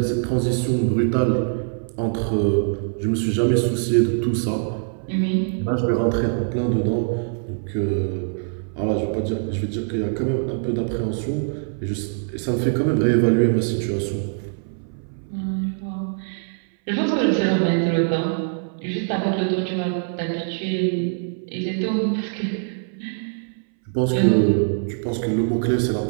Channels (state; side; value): silent; left; 60 dB below the other